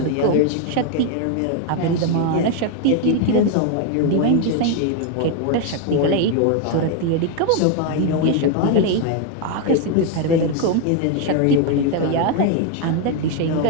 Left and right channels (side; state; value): both; different; correlation 0.01